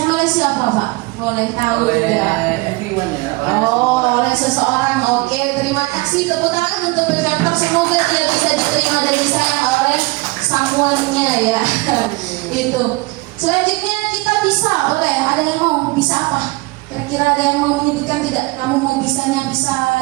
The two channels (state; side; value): quieter; left; 23.5 dB